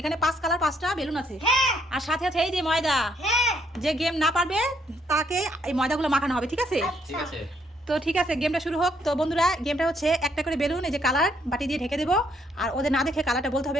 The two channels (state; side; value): normal; both; correlation 0.70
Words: 5 কালার 5টা বেলুন আছে। আর সাথে আছে এই যে ময়দা। যে গেম না পারবে তাকে এই ময়দাগুলো মাখানো হবে, ঠিক আছে? ঠিক আছে। তো ঠিক আছে, গেমটা শুরু হোক। তো বন্ধুরা, গেমটা হচ্ছে একটা করে বেলুন এই যে কালার বাটি দিয়ে ঢেকে দেবো। আর ওদের না দেখে কালারটা বলতে